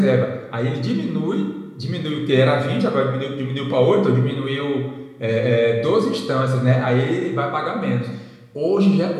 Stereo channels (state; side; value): identical; both; correlation 1.00